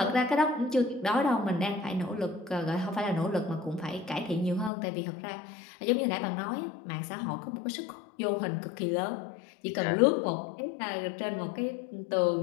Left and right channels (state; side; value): drops out; right; at 4.7 s